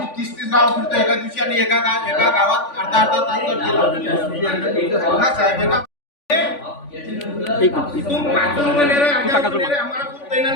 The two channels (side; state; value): right; late; 3.5 ms